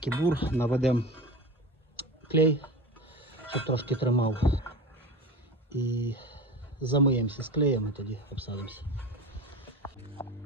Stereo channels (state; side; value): normal; both; correlation 0.30